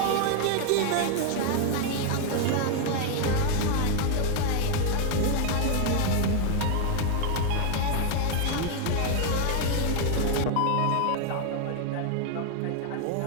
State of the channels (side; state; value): both; different; correlation 0.00